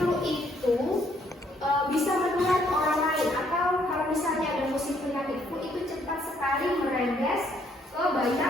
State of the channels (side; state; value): both; normal; correlation 0.68